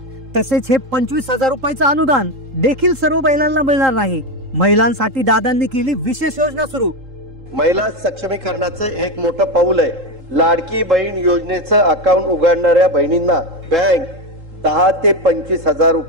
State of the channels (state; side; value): late; left; 3.8 ms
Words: तसेच हे 25,000 रुपयाचं अनुदान देखील सर्व महिलांना मिळणार नाही। महिलांसाठी दादांनी केली विशेष योजना सुरू। महिला सक्षमीकरणाचं एक मोठं पाऊल आहे। लाडकी बहीण योजनेचं अकाउंट उघडणाऱ्या बहिणींना बँक 10 ते 25,000